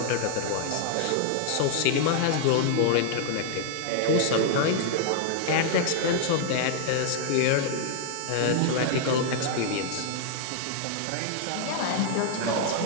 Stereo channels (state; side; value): different; both; correlation 0.00